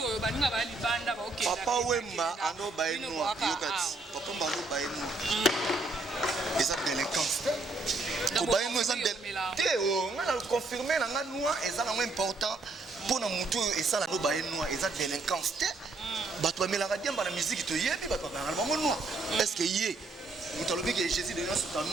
ba ninga ba libanda ba OK papa wemba ando ba eno yokati papa mbalo ba eno eza délinquance ko ba eno eza te o ngana confirmer na ngana eza na important pour na mutu esala no ba eno eza délinquance te bato ba melanga diamba na musique to yebi bato ba ngana bango no est-ce que yé mutalobi que Jésus de Nias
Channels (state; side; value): quieter; left; 3.3 dB